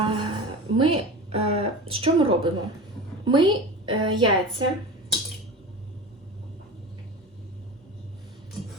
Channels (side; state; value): both; normal; correlation 0.31